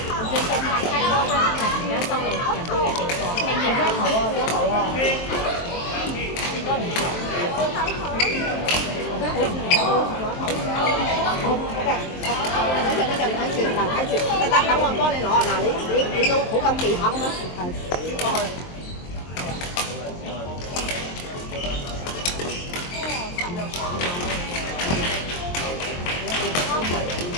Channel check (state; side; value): late; right; 23 ms